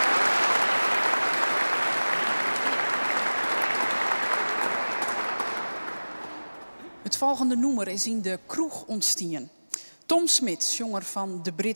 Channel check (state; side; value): inverted; both; correlation -1.00